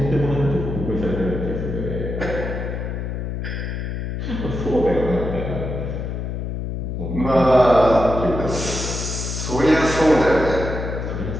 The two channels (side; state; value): left; noise; hum, 4 dB below the sound